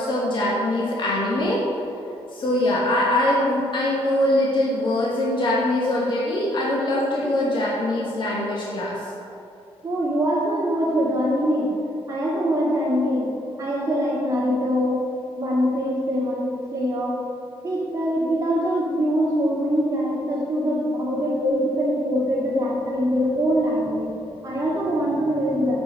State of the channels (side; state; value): both; normal; correlation 0.69